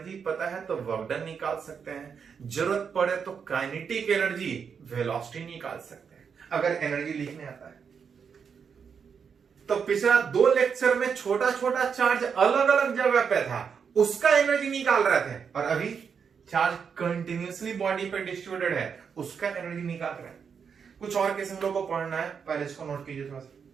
पता है तो वर्क डन निकाल सकते हैं, जरूरत पड़े तो काइनेटिक एनर्जी, वेलोसिटी निकाल सकते हैं, अगर एनर्जी लिखने आता है। तो पिछला 2 लेक्चर में छोटा छोटा चार्ज अलग अलग जगह पे था, उसका एनर्जी निकाल रहे थे, और अभी चार्ज कंटिन्यूअसली बॉडी पे डिस्ट्रीब्यूटेड है, उसका एनर्जी निकाल रहे हैं। कुछ और केस हम लोग को पढ़ना है, पहले इसको नोट कीजिए थोड़ा सा।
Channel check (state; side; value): quieter; left; 6.5 dB